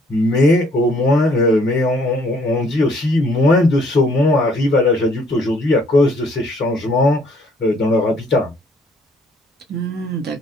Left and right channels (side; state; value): both; normal; correlation 0.63